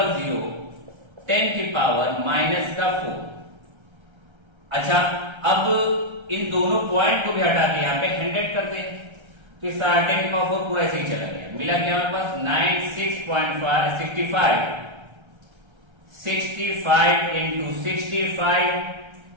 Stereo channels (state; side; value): late; left; 1.3 ms